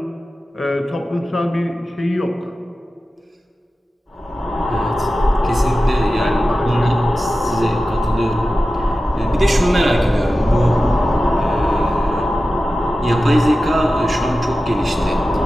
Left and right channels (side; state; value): both; normal; correlation 0.94